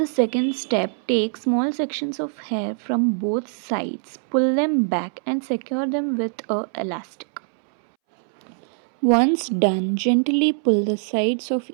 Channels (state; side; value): silent; left; 64 dB below the other